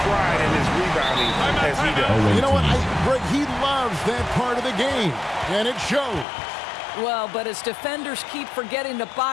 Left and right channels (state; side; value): drops out; right; at 6.2 s